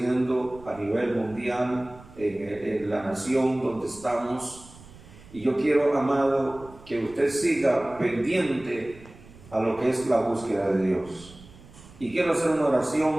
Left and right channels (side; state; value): right; noise; rumble, 21 dB below the sound